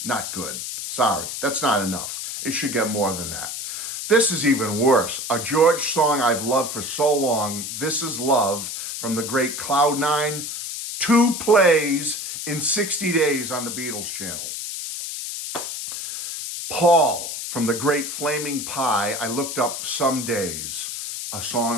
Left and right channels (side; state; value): left; noise; hiss, 6 dB below the sound